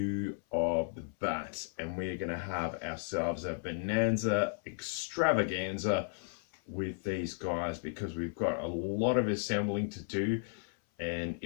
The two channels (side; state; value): right; silent; 55 dB below the other